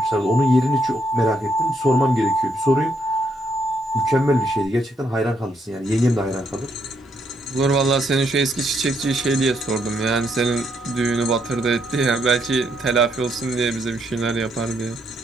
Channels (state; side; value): normal; both; correlation 0.75